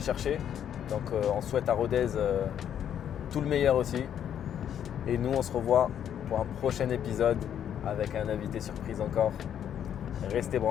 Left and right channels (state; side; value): quieter; right; 9.5 dB